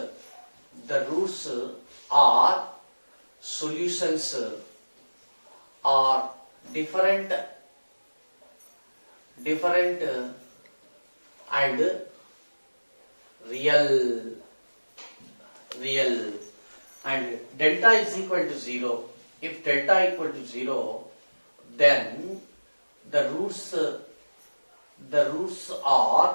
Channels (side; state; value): both; inverted; correlation -1.00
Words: are solutions are different and real. And delta is equal to 0. If delta equal to 0, then the roots